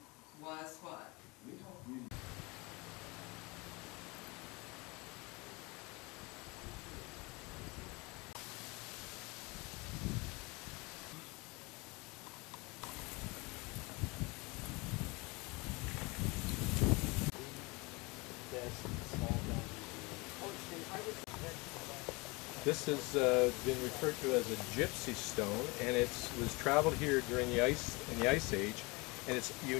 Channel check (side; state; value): right; quieter; 26.1 dB